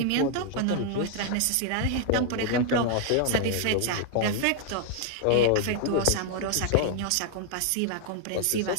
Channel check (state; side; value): different; both; correlation 0.00